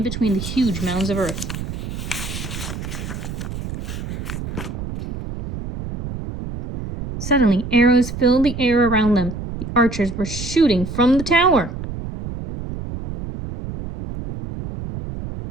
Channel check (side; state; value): right; noise; rumble, 7 dB below the sound